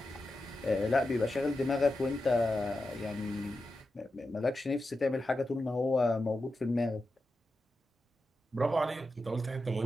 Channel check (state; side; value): normal; both; correlation 0.90